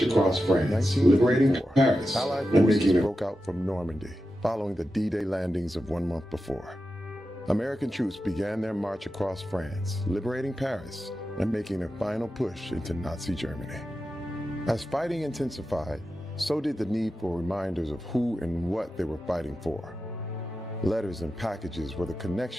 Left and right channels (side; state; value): both; normal; correlation 0.91